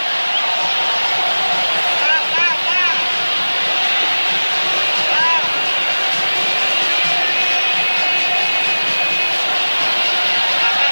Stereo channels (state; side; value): inverted; both; correlation -1.00